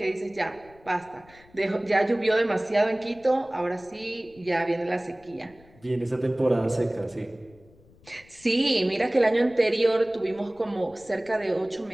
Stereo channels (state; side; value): noise; left; rumble, 27 dB below the sound